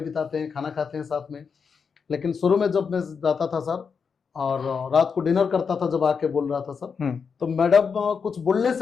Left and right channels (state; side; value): quieter; right; 5.9 dB